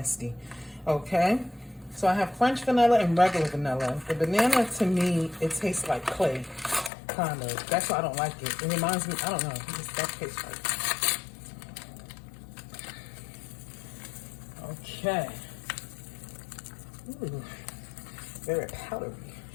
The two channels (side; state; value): right; drops out; at 6.9 s